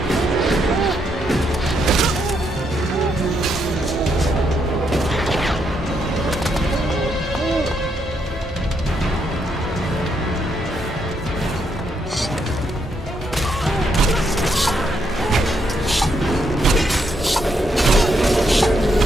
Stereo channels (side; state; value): both; normal; correlation 0.77